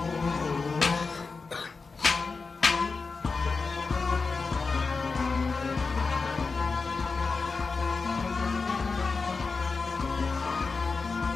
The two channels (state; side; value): quieter; right; 4.4 dB